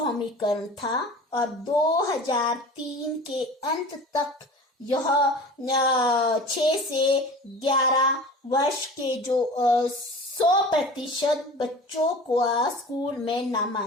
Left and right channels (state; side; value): normal; both; correlation 0.38